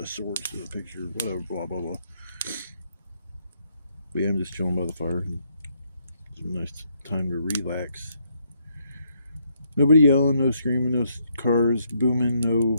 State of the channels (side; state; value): both; inverted; correlation -0.74